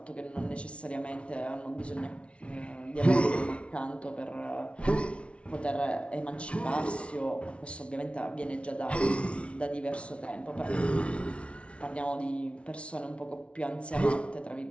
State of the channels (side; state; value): right; late; 0.060 ms